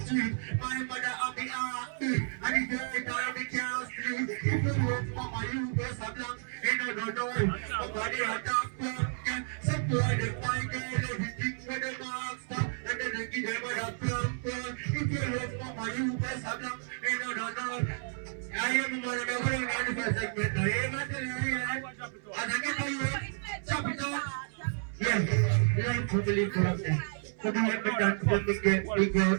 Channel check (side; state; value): left; silent; 57 dB below the other